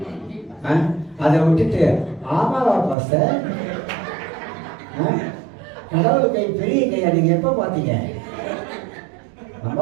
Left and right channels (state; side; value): drops out; left; at 3.0 s